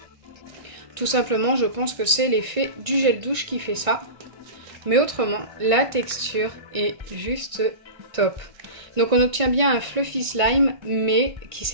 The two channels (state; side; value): late; left; 1.6 ms